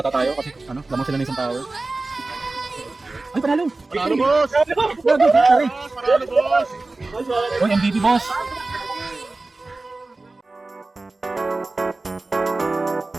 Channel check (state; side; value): quieter; left; 3.3 dB